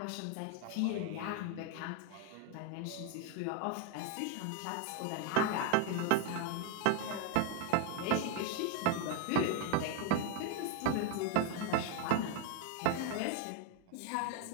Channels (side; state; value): both; different; correlation 0.01